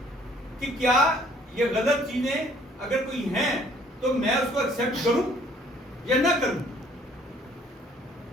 کہ کیا یہ غلط چیزیں اگر کوئی ہیں تو میں اس کو ایکسپٹ کروں یا نہ کروں.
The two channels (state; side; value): normal; both; correlation 0.59